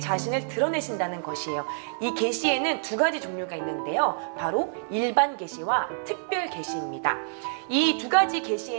드러내신다는 것이에요. 이 계시에는 두 가지 종류가 있는데요, 바로 일반 계시와 특별 계시입니다. 이 두 가지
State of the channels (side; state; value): left; silent; digital silence